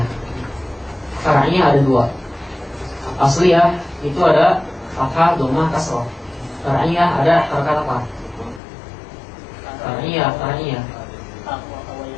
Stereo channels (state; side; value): drops out; right; at 8.6 s